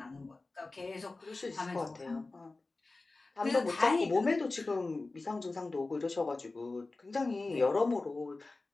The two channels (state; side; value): quieter; right; 3.4 dB